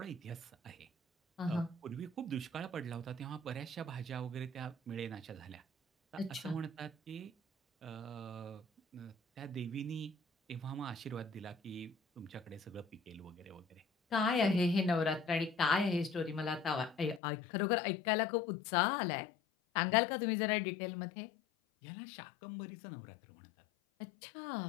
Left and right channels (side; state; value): right; drops out; at 17.2 s